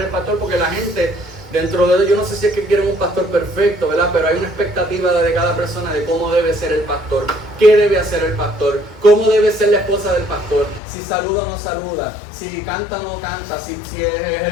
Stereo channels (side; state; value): right; drops out; at 10.8 s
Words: pastor, porque la gente, dentro de ellos, yo no sé si es que quieren un pastor perfecto, ¿verdad? Pero hay una expectativa de cada persona de cómo debe ser el pastor, qué debe hacer el pastor, cómo debe ser la esposa del pastor, si saluda o no saluda, si canta o no canta, si